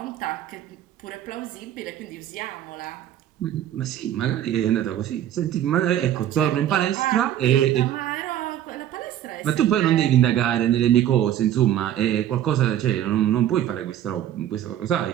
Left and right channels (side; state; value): left; quieter; 11.4 dB